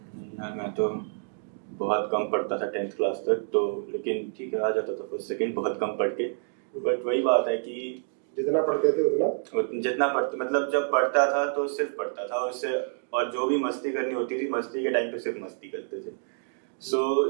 यार मैं तो बहुत कम पढ़ता था 10th क्लास तक, तो लेकिन ठीक है आ जाता था फर्स्ट सेकंड बहुत कम पढ़ के। बट वही बात है कि जितना पढ़ते थे उतना जितना पढ़ते, मतलब जब पढ़ता था तो सिर्फ पढ़ता था और जो भी मस्ती करनी होती थी मस्ती के टाइम पे सिर्फ मस्ती करते थे।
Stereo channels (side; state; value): left; silent; digital silence